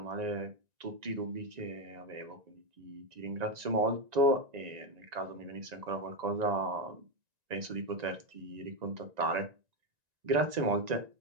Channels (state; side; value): late; left; 1.9 ms